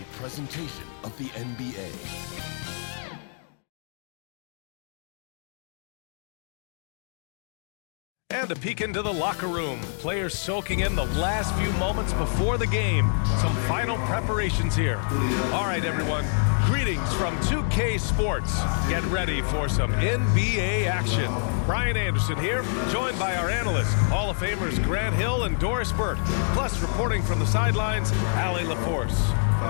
presentation of the NBA. And a peek into the locker room. Players soaking in the last few moments before the game. Some final preparations here. All right, everyone. Greetings from 2K Sports. Get ready for some NBA action. Brian Anderson here, joined by our analysts, Hall of Famers Grant Hill and Doris Burke. Plus, reporting from the sidelines, Allie LaForce.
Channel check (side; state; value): right; silent; digital silence